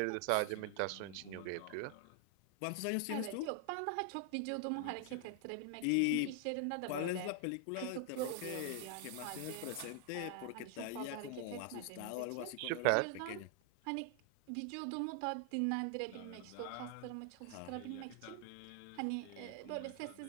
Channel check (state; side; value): different; both; correlation 0.00